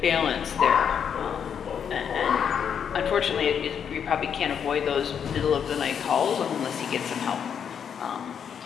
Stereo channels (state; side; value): quieter; right; 7.7 dB